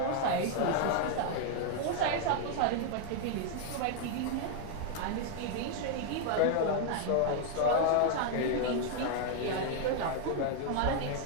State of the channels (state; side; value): different; both; correlation 0.00